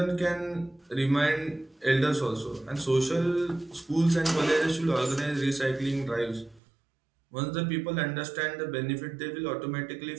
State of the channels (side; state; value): left; drops out; at 6.6 s